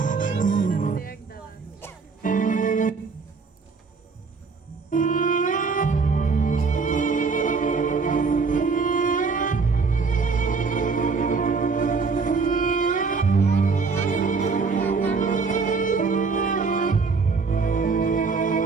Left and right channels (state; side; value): quieter; left; 4.7 dB